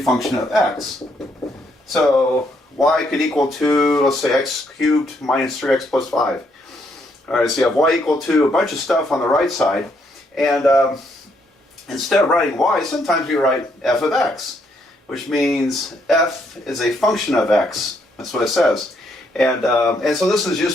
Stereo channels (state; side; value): normal; both; correlation 0.73